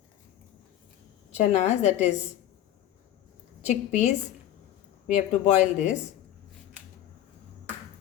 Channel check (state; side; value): quieter; right; 12.2 dB